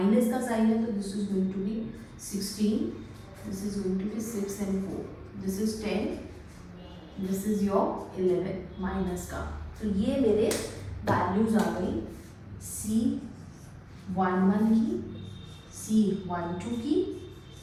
का साइन है तो this is going to be 16, this is going to be 6 and 4, this is 10, this is your 11 minus का। तो ये मेरे वैल्यूज आ गई C11 की, C12 की,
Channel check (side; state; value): both; identical; correlation 1.00